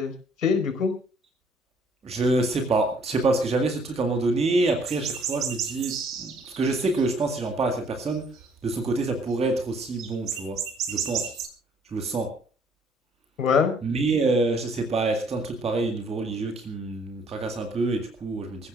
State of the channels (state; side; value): normal; both; correlation 0.62